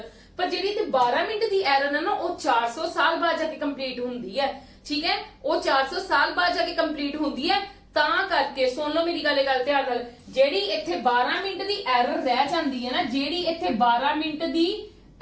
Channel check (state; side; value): identical; both; correlation 1.00